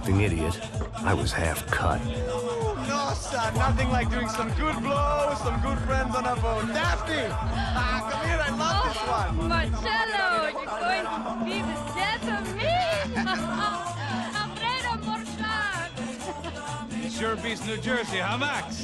idiot, I was half cut. No, son, nothing like doing some good blows, some good friends on a boat. Daphne! Come here, I love this one. Marcello, you're going to be the death of me! Alfredo Morchan! It sure beats New Jersey, huh,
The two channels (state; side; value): identical; both; correlation 1.00